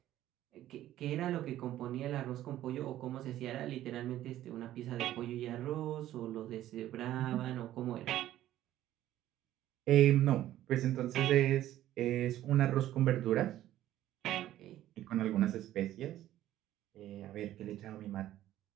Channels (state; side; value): quieter; left; 13.4 dB